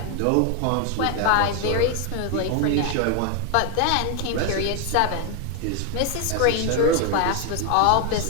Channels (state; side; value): different; both; correlation 0.01